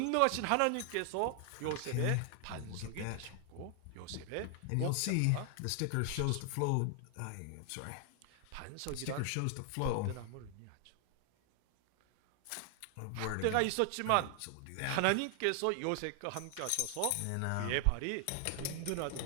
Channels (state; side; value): different; both; correlation 0.00